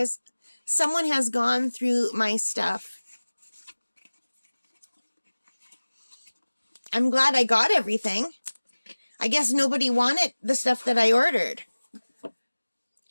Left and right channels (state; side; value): inverted; both; correlation -1.00